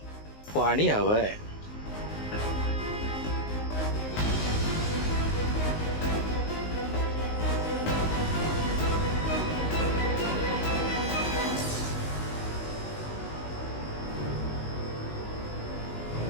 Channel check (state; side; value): late; right; 19 ms